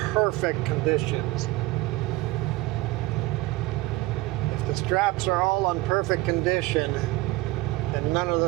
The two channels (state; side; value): quieter; left; 19.3 dB